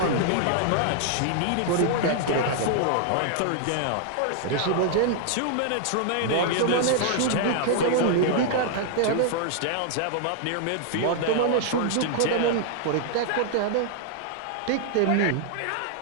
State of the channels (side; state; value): both; different; correlation -0.01